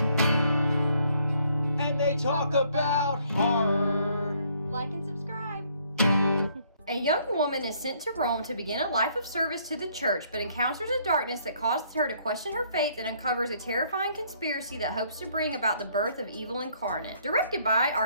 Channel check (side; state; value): both; inverted; correlation -0.66